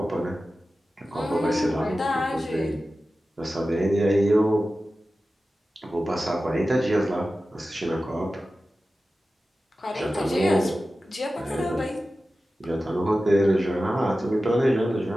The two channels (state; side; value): normal; both; correlation 0.94